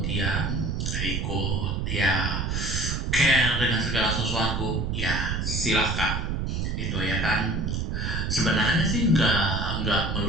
ikut ya care dengan segala sesuatu, ya silahkan itu ya kan. Sebenarnya sih nggak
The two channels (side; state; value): right; noise; rumble, 1 dB below the sound